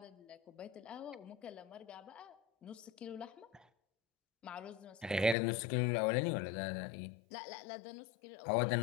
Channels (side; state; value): right; drops out; at 5.4 s